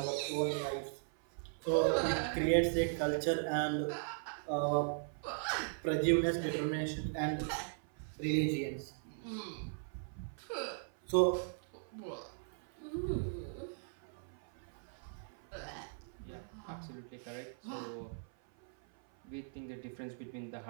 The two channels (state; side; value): silent; left; 52 dB below the other